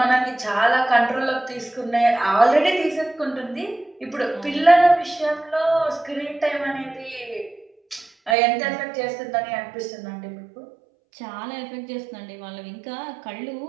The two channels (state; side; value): drops out; left; at 8.3 s